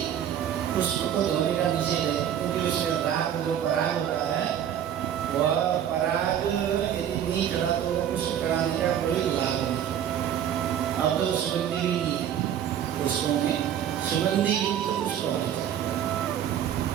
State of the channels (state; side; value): quieter; left; 9.8 dB